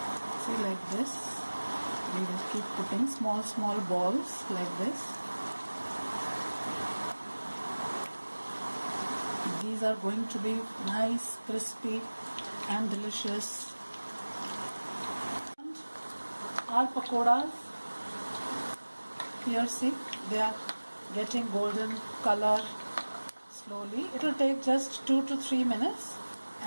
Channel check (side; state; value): both; inverted; correlation -1.00